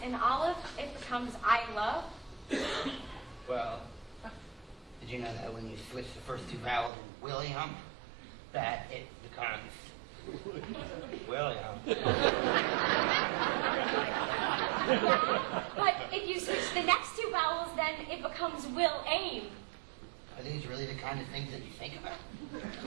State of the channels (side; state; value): left; drops out; at 6.9 s